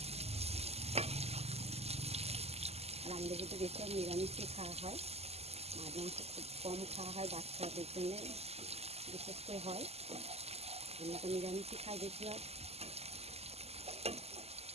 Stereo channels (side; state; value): left; late; 0.30 ms